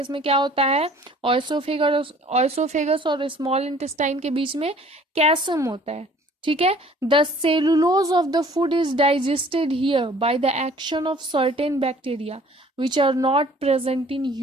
में क्या होता है, ऑयसोफेगस और स्मॉल इंटेस्टाइन के बीच में कैसम होता है। ठीक है। The cellulose of the food is digested here by the action of certain bacteria which are not present in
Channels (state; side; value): normal; both; correlation 0.53